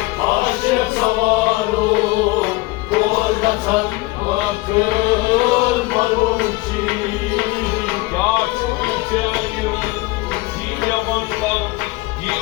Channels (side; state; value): right; quieter; 21.7 dB